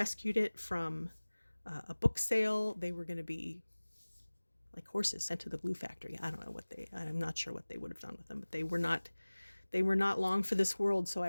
it from a book sale. They were going to be like horses sent to the glue factory. I don't know what I'm not sure what they would have done with them, but they were not long for this world. So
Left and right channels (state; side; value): inverted; both; correlation -1.00